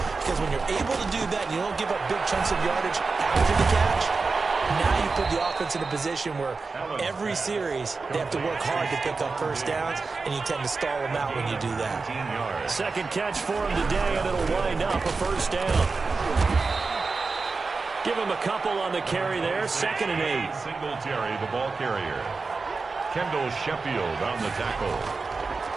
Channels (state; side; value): quieter; left; 4.2 dB